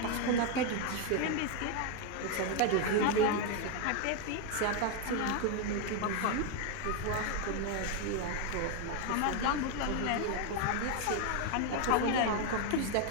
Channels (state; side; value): different; both; correlation 0.01